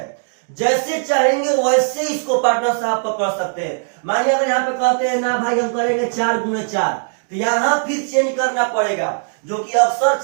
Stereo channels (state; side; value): silent; left; digital silence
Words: जैसे चाहेंगे वैसे इसको पार्टनर साहब पकड़ सकते हैं। मानिए अगर यहाँ पे कहते हैं ना भाई हम करेंगे 4 गुणे 4, तो यहाँ फिर चेंज करना पड़ेगा, जो कि अक्सर